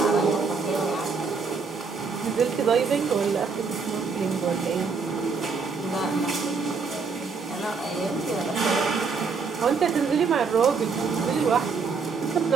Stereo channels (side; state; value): left; quieter; 5.0 dB